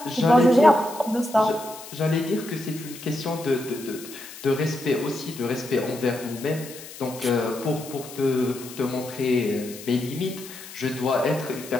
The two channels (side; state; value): left; noise; hiss, 15 dB below the sound